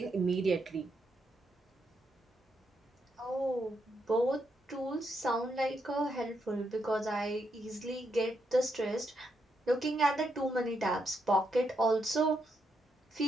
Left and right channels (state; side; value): normal; both; correlation 0.80